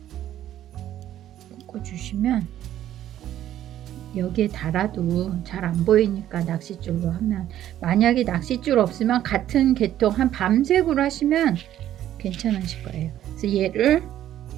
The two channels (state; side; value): quieter; left; 12.0 dB